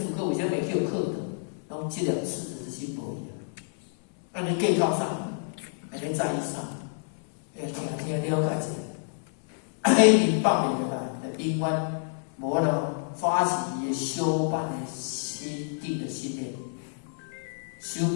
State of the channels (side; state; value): right; silent; 59 dB below the other